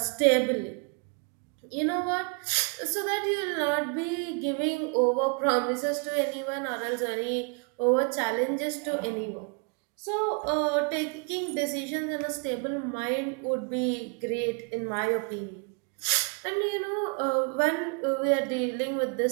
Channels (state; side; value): quieter; left; 36.6 dB